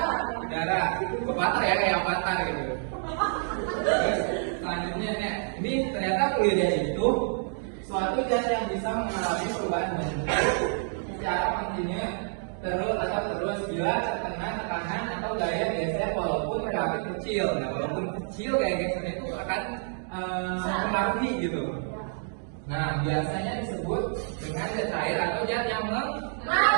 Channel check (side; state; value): left; silent; 59 dB below the other